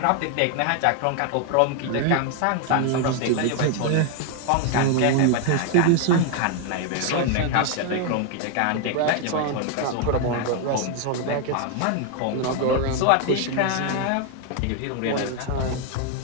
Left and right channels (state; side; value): different; both; correlation 0.00